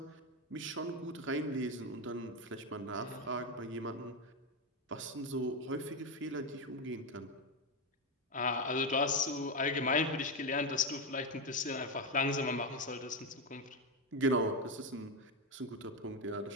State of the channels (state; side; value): normal; both; correlation 0.09